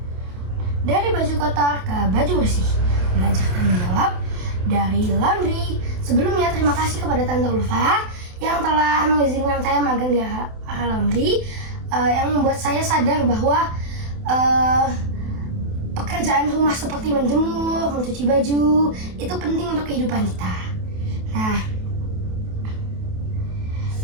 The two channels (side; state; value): left; late; 28 ms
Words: dari baju kotor ke baju bersih, belajar tanggung jawab dari laundry. Sebelumnya terima kasih kepada Tante Ulfa yang telah mengizinkan saya magang di AHA Laundry, yang membuat saya sadar bahwa pekerjaan rumah seperti menjemur, mencuci baju itu penting untuk kehidupan kita. Nah,